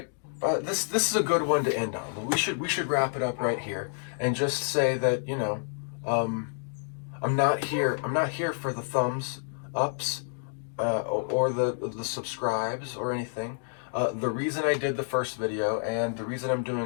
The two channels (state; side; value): silent; right; digital silence